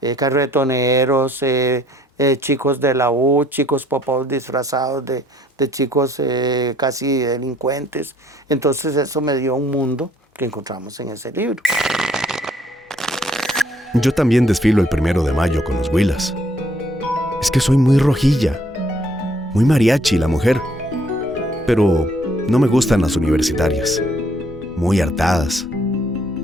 carretoneros, chicos de la U, chicos popos disfrazados de chicos casi delincuentes. Entonces eso me dio un mundo que encontramos en ese libro. Yo también desfilo el 1 de mayo con los huilas. Es que soy muy rojilla, muy mariachi la mujer. Pero no me gustan las universitarias, muy hartadas,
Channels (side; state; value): both; normal; correlation 0.63